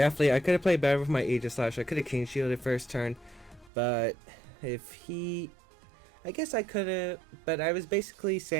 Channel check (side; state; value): left; drops out; at 3.7 s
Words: I could have played better with my Aegislash. I could have King Shielded first turn, but if he... I guess I could have, but I was basically